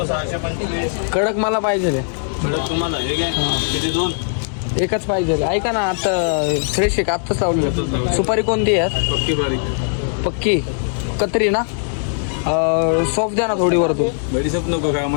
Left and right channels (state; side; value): silent; right; digital silence